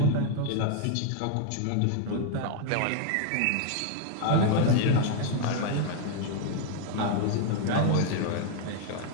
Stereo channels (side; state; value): both; different; correlation 0.00